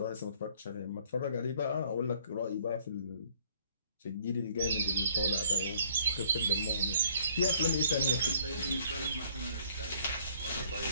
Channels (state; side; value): inverted; both; correlation -0.60